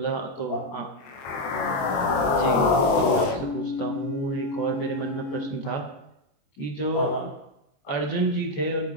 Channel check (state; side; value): late; right; 22 ms